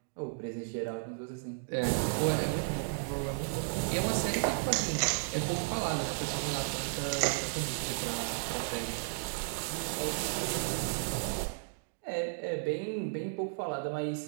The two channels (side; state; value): left; silent; digital silence